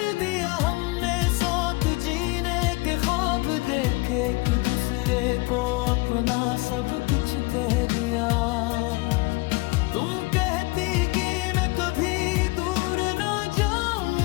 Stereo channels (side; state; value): right; quieter; 24.4 dB